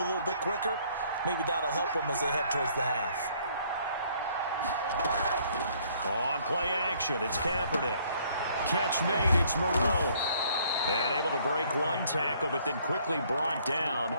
little bit quicker. Maybe that'll help them as they head towards the half. On play action, it's Kaepernick. Catch made, it's Moreau. And able to break one tackle, but then quickly brought down.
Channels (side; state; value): both; inverted; correlation -0.63